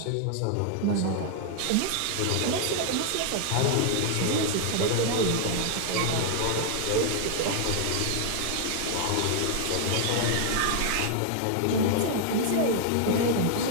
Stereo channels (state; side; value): different; both; correlation 0.00